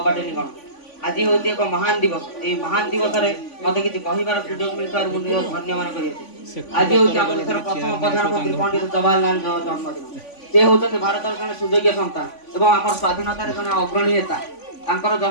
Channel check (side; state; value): right; late; 3.5 ms